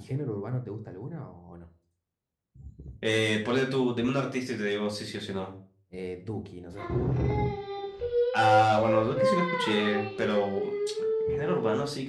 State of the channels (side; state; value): both; identical; correlation 1.00